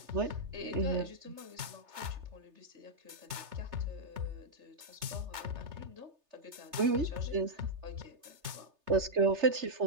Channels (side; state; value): left; late; 3.3 ms